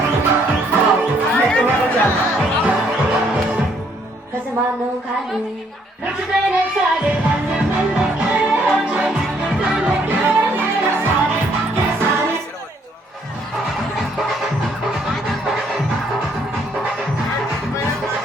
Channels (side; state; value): both; normal; correlation 0.67